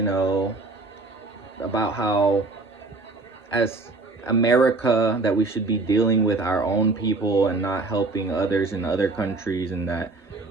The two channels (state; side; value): quieter; left; 3.5 dB